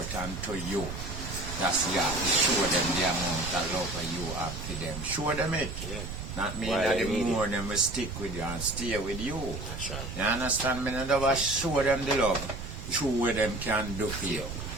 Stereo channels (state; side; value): noise; right; rumble, 8 dB below the sound